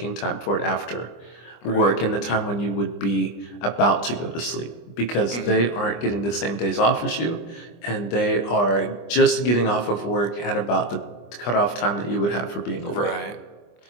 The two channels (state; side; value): late; right; 25 ms